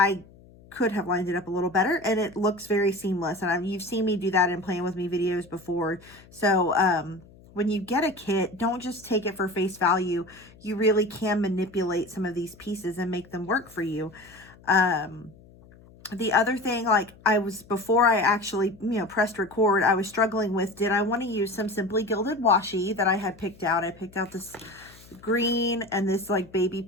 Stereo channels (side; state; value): left; noise; hum, 24 dB below the sound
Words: could have lined it up a little better, and it looks very seamless. And you've seen me do that in Playing With Me videos before. So when you get a kit, don't just take it for face value. You really can manipulate some of these pieces and make them work for you. The other thing, like before I actually, pressed record, I was struggling with, did I want to use some Simply Gilded washi that I had picked out? I picked out this green and this like baby